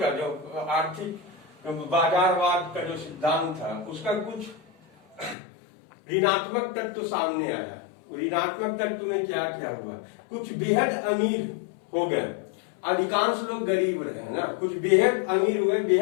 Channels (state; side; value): drops out; right; at 5.4 s